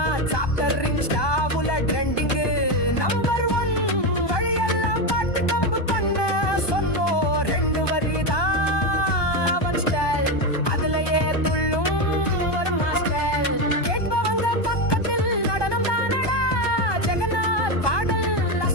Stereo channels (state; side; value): late; right; 1.2 ms